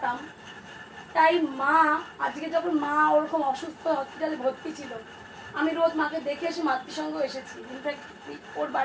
তাই মা আজকে যখন মা ওরকম অসুস্থ হসপিটালে ভর্তি ছিল, আমি রোজ মাকে দেখে এসে মাতৃসঙ্গ এসেছি, ইনফ্যাক্ট ওর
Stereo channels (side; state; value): both; identical; correlation 1.00